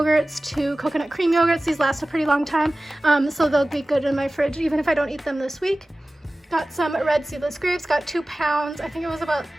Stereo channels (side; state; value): both; normal; correlation 0.97